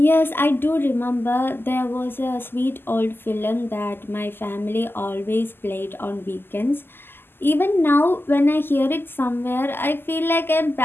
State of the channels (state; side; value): late; right; 0.10 ms